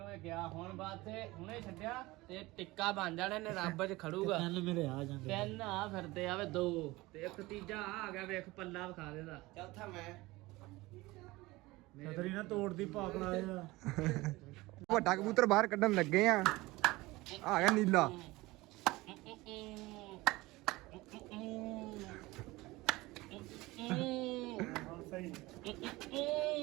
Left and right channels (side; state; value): left; quieter; 20.6 dB